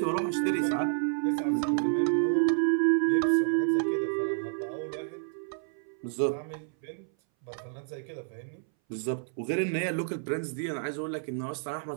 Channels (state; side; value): silent; left; 58 dB below the other